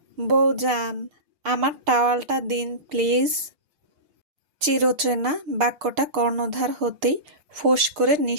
বউজান, আমার টাওয়ালটা দিন প্লিজ। চিরচেনা বাক্যটা কর্ণধার হতেই ফোঁস করে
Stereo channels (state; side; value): late; left; 6.6 ms